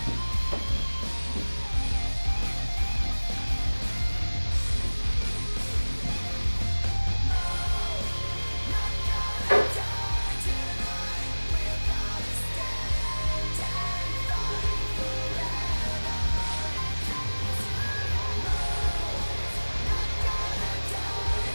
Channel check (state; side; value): inverted; both; correlation -1.00